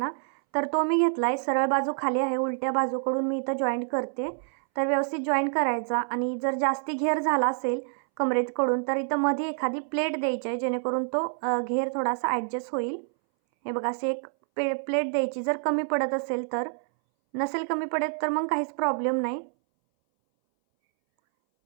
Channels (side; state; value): left; silent; 60 dB below the other